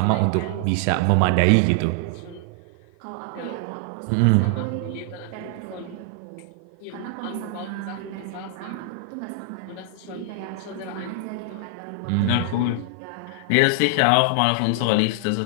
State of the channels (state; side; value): different; both; correlation 0.00